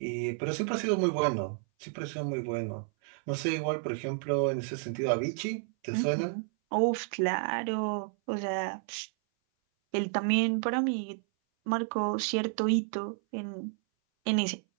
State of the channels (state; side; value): silent; left; 57 dB below the other